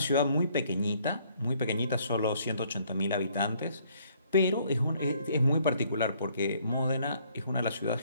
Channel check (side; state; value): both; inverted; correlation -0.64